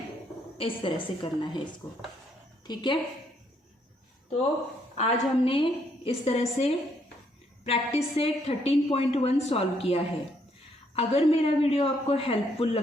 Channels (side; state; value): both; normal; correlation 0.71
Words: इस तरह से करना है इसको, ठीक है। तो आज हमने इस तरह से प्रैक्टिस से 13.1 सॉल्व किया है। अगर मेरा वीडियो आपको हेल्पफुल